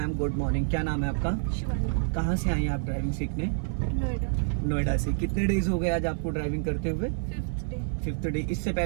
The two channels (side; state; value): left; silent; 58 dB below the other